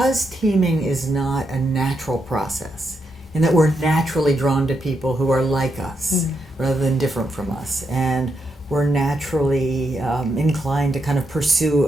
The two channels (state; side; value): normal; both; correlation 0.82